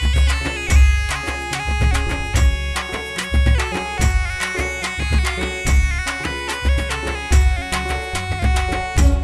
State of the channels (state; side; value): identical; both; correlation 1.00